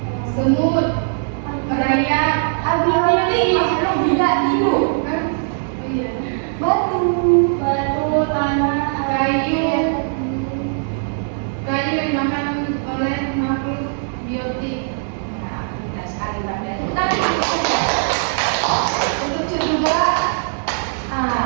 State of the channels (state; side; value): silent; left; 66 dB below the other